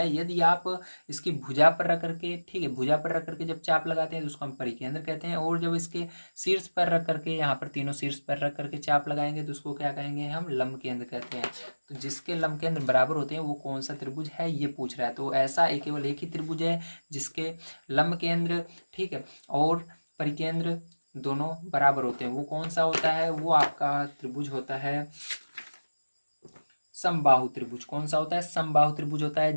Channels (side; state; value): both; inverted; correlation -1.00